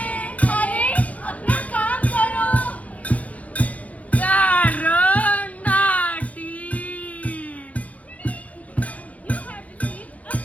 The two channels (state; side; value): late; right; 0.069 ms